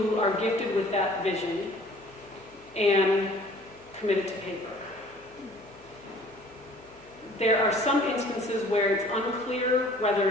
are gifted with that vision and committed to paper. There are some instances where it's unclear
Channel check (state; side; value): noise; left; hum, 27 dB below the sound